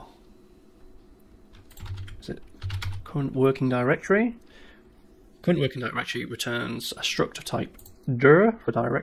is it current working directory? Current working directory returns a struct of type dir for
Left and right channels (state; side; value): identical; both; correlation 1.00